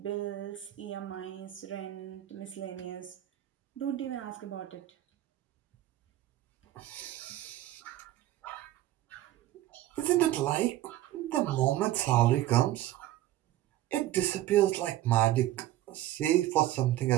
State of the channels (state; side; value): quieter; left; 14.2 dB